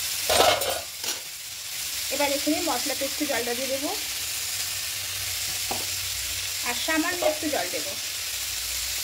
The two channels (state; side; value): identical; both; correlation 1.00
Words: এবার এখানে মশলা পেস্টে জলটা দিয়ে দেবো আর সামান্য একটু জল দেবো।